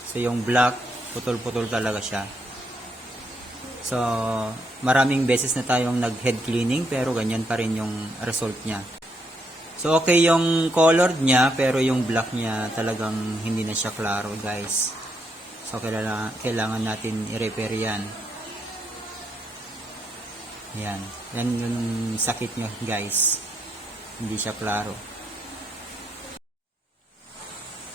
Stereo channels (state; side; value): normal; both; correlation 0.77